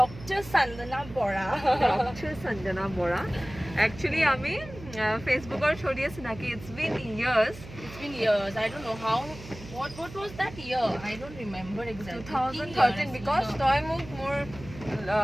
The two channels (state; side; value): noise; right; hum, 15 dB below the sound